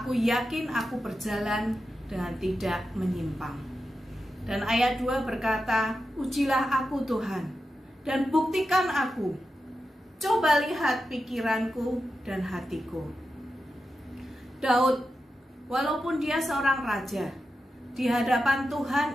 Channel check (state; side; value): normal; both; correlation 0.90